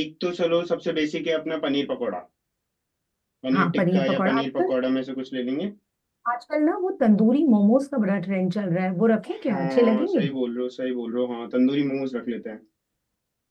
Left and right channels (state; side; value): identical; both; correlation 1.00